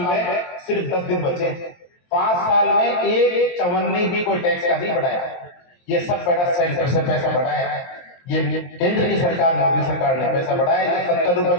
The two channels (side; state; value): right; late; 23 ms